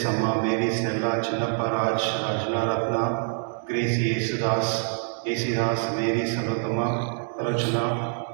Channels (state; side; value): silent; left; 61 dB below the other